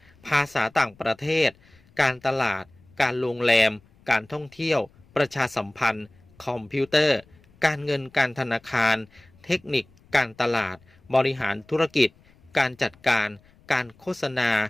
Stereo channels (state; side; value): noise; left; rumble, 29 dB below the sound